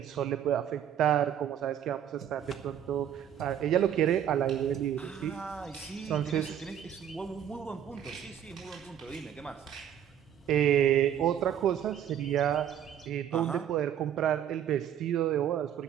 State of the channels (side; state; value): left; quieter; 9.8 dB